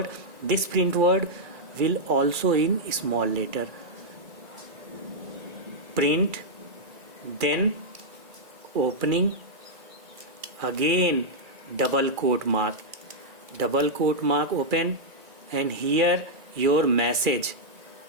will also in small letter. Print, then opening, again double quote mark open, and here your message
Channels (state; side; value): late; left; 2.4 ms